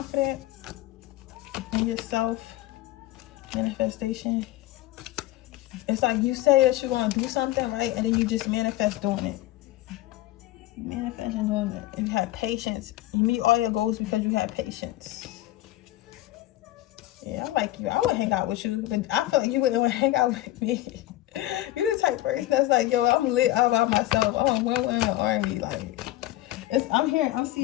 in yourself. Manifestation. It's like you say that you're going to do something, right? And then you just manifest doing it. Manifest and doing it. And you have patience. You meet all your goals because you have patience. Yeah, I like you. I would hang out with you, but I feel like you wouldn't want to hang out with me. You're the type of person that's like, yo, I'm lit all by myself. Oh, I'm in the army. Like, I'm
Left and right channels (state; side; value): quieter; right; 15.8 dB